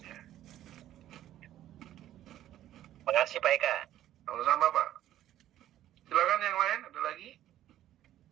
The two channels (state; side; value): quieter; left; 12.7 dB